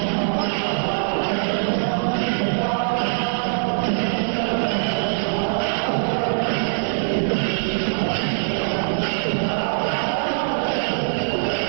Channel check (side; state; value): left; silent; digital silence